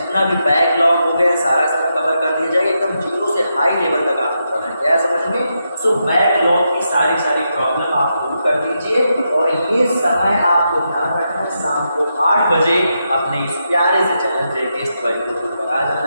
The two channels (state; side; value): inverted; both; correlation -0.84